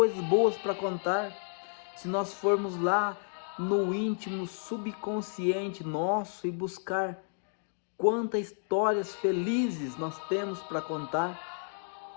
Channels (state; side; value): silent; right; 57 dB below the other